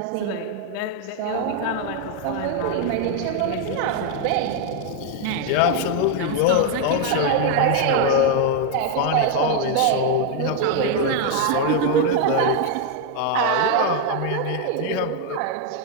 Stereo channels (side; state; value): both; different; correlation 0.01